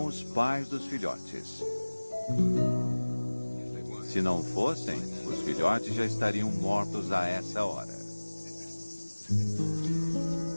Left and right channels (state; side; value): inverted; both; correlation -1.00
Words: os pais dos filhotes. Se não fossem, os filhotes já estariam mortos a essa hora.